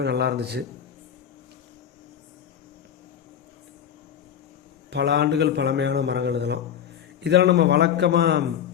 நல்லா இருந்துச்சு. பல ஆண்டுகள் பழமையான மரங்கள் இதெல்லாம் நம்ம வழக்கமாக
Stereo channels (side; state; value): right; quieter; 9.0 dB